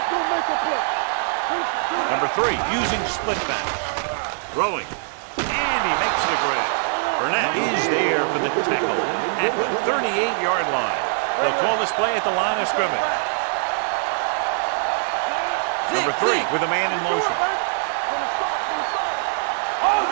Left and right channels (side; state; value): left; silent; digital silence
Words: Number 3 using split backs. Rolling. And he makes the grab. Burnett is there for the tackle at the 38-yard line. They'll call this play at the line of scrimmage. Number 3 with a man in motion. From the start. Come